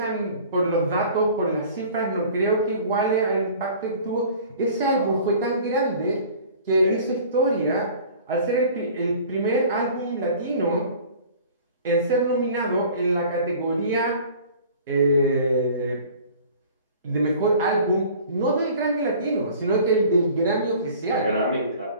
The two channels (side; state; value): both; inverted; correlation -0.46